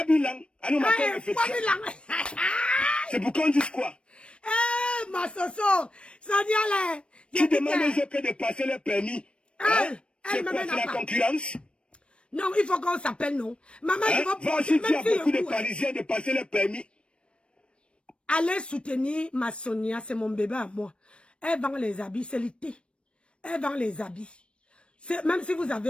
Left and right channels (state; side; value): late; right; 0.058 ms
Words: Allons, ma c'est pour qu'on dise quoi? Eh, ma Soso, Sonia là. Tu demandes aux autres de passer le permis. Hein? C'est quoi, c'est la concurrence? Non, il faut qu'on s'appelle, non. Maman, hein? je vais Va aussi dire à beaucoup de Parisiens de passer le permis. Allez soutenir ma Sonia, c'est mon bébé à moi. Elle vend les habits, c'est l'été. Elle vend les habits. Même si vous